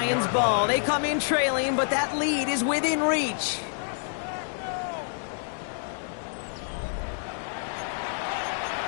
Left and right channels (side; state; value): right; silent; digital silence